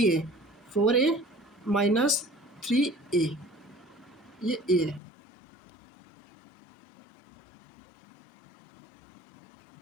4A माइनस 3A, ये A है।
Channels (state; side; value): drops out; right; at 5.0 s